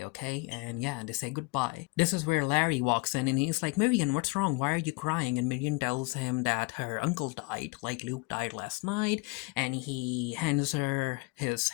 okay? And yeah, they say goodbye. This is where Larry walks in, and he's like, Miriam, what's wrong? Why are you crying? And Miriam tells him that her uncle died, like Luke died last night, and he hands her his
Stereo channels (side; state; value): right; quieter; 27.2 dB